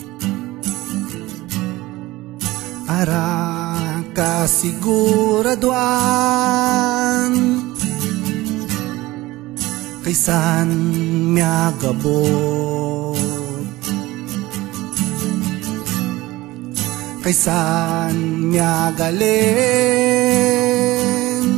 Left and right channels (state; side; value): quieter; left; 18.8 dB